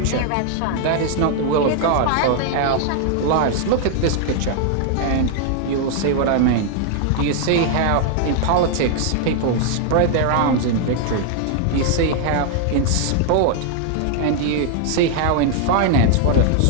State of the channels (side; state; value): both; different; correlation 0.00